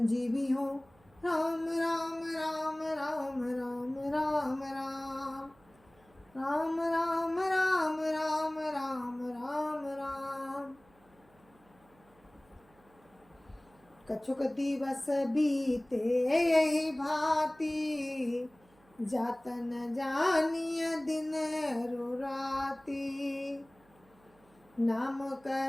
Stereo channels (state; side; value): noise; right; hum, 30 dB below the sound